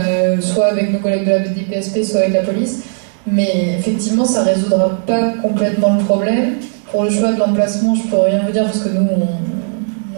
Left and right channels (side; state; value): left; silent; 59 dB below the other